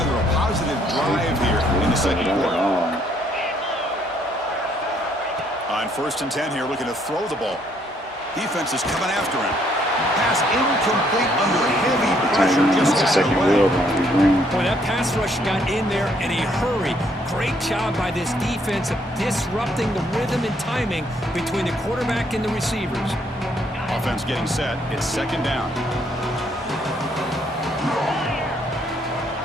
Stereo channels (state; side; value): normal; both; correlation 0.68